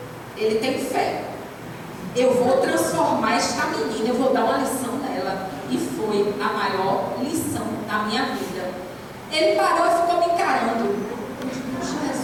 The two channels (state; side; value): identical; both; correlation 1.00